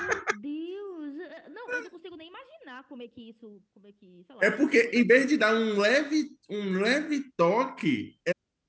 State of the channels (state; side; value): identical; both; correlation 1.00